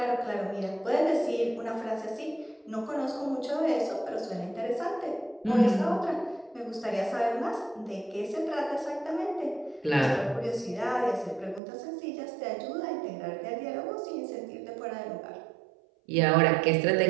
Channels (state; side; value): drops out; left; at 11.6 s